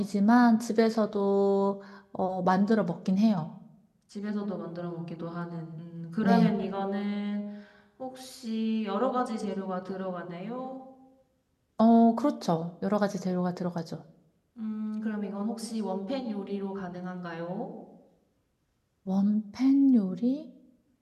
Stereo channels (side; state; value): both; identical; correlation 1.00